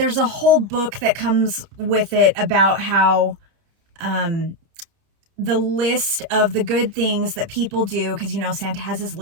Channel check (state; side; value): late; left; 30 ms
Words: a whole book that comes with it about how, the list of the good things that people do, because Santa has his